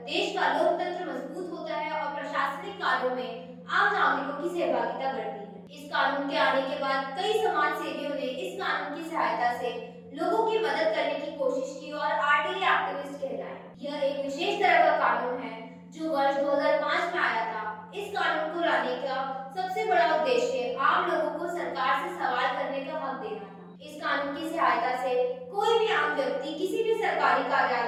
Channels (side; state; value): both; identical; correlation 1.00